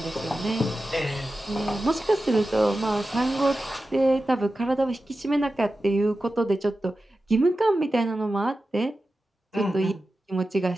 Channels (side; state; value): both; normal; correlation 0.93